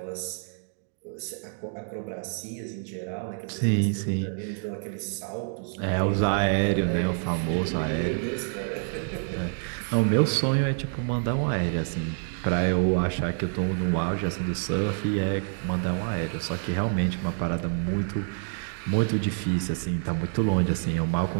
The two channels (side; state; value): left; silent; digital silence